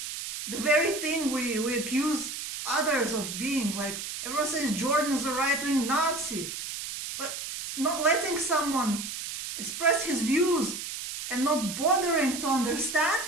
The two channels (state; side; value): noise; right; hiss, 7 dB below the sound